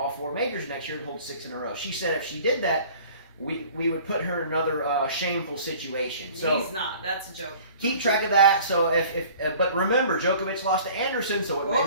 4 majors next year and hold 6 in a row. She said if she did that, we would put her in another shameful situation. So he's not. That's a joke. Keep track of that. So but remember, Djokovic lost to Anderson, so it may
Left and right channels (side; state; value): both; inverted; correlation -0.48